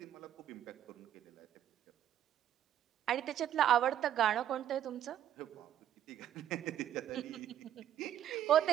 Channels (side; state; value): left; quieter; 10.9 dB